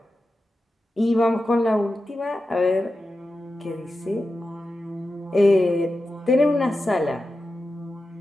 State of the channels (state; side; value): normal; both; correlation 0.91